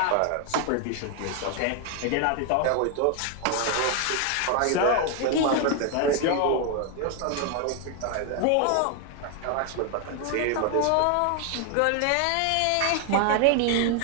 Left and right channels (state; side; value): different; both; correlation 0.01